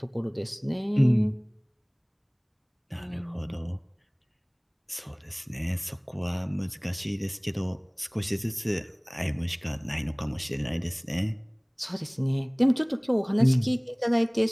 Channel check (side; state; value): both; identical; correlation 1.00